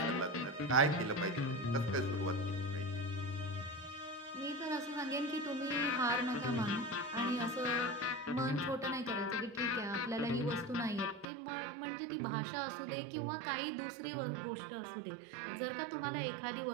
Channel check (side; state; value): left; drops out; at 11.2 s